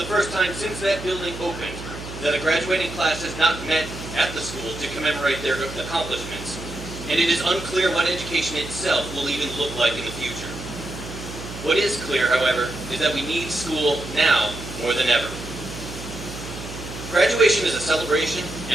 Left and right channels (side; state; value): right; noise; hum, 11 dB below the sound